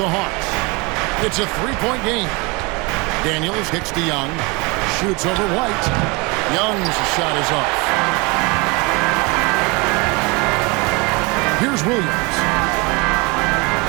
the Hawks. It's a 3-point game. Daniels kicks to Young. Shoots over White. Young's shot is off. Here's Williams.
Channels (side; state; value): left; quieter; 26.7 dB